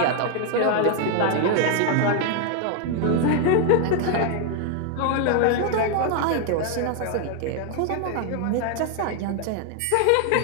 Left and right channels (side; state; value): both; different; correlation 0.00